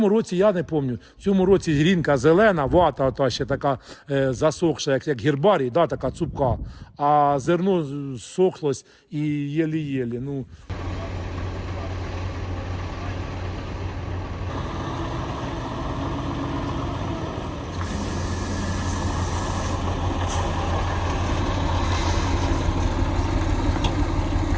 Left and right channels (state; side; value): identical; both; correlation 1.00